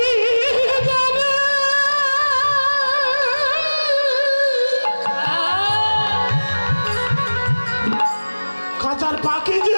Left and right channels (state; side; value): inverted; both; correlation -1.00